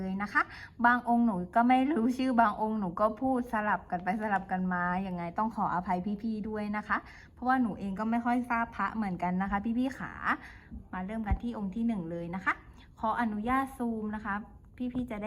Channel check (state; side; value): identical; both; correlation 1.00